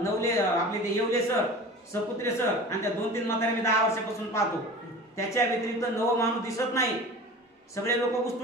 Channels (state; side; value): normal; both; correlation 0.37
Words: ते येवले सर सपुत्रे सर आणि त्या 2-3 म्हातारे मी 10 वर्षापासून पाहतो, त्याच्या व्यतिरिक्त नवं माणूस दिसत नाही. सगळे लोक